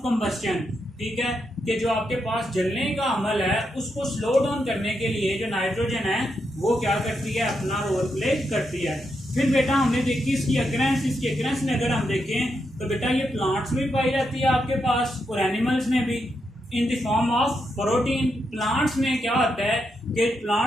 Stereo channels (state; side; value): normal; both; correlation 0.83